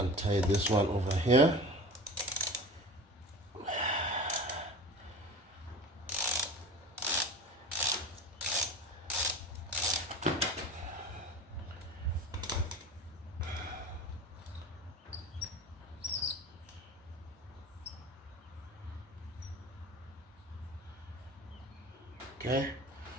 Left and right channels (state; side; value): normal; both; correlation 0.35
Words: this one over here. Okay,